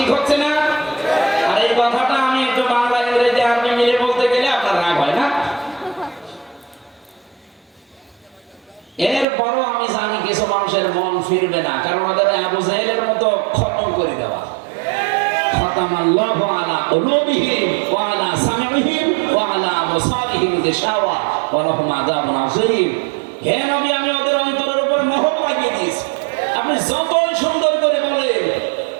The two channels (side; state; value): left; drops out; at 9.2 s